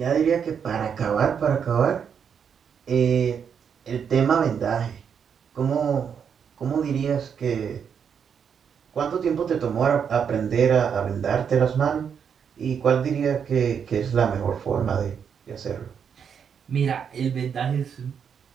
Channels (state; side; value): quieter; left; 7.3 dB